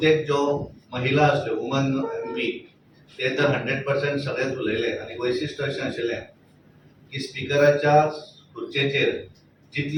जो महिला असल्यो वुमन एमपी ते तर 100% सगळेच उलयले. आणि वैशिष्ट्य अशें आशिल्लें की स्पिकराच्या खुर्चेचेर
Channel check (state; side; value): identical; both; correlation 1.00